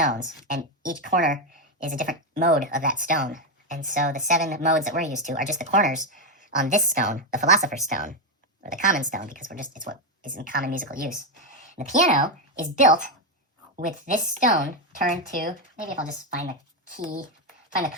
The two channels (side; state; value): both; normal; correlation 0.06